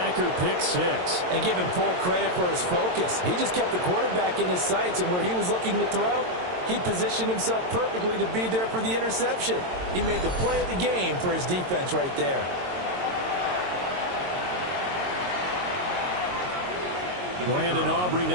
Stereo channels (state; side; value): late; left; 22 ms